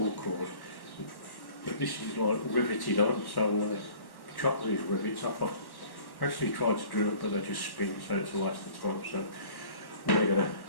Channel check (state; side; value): late; right; 1.1 ms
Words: cord, but this is like riveted on, so I'm going to chop these rivets off. I actually tried to drill it, but they just spin, so it's a waste of time. So I'm going